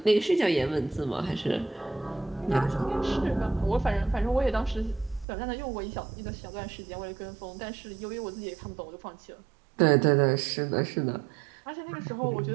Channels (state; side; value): drops out; left; at 5.2 s